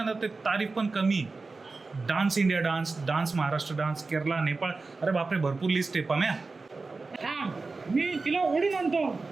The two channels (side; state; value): left; quieter; 3.9 dB